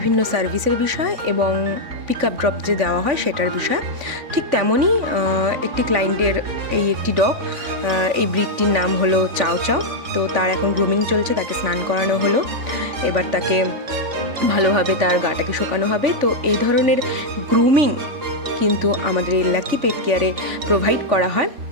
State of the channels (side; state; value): left; late; 3.5 ms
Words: সার্ভিসের বিষয় এবং পিক আপ ড্রপ যে দেওয়া হয় সেটার বিষয়। ঠিক তেমনই একটি ক্লায়েন্টের এই একটি ডগ, এই ব্রিডটির নাম হলো চাও চাও। তো তার এখন গ্রুমিং চলছে, তাকে স্নান করানো হলো, এবার তাকে ভালোভাবে তার গাটাকে শোকানো হবে। তো এই ধরনের গ্রুমিং কিন্তু আমাদের এই লাকি পেট কেয়ারে প্রোভাইড করা হয়।